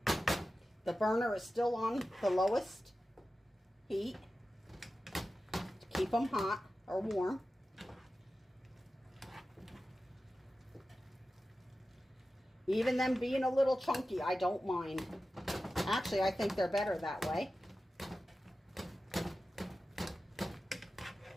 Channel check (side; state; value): both; normal; correlation 0.94